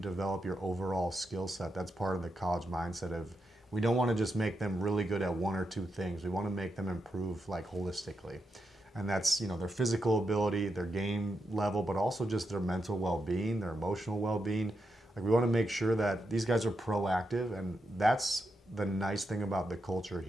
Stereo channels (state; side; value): normal; both; correlation 0.85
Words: your overall skill set, that's part of the college mindset of, we don't want to just make them really good at one or two things. We want to make them improve holistically. And that's, their physical ability, their game level, but also just their mental well-being, their emotional well-being. We want to make sure that these guys are proactive, and that's the nice thing about the culture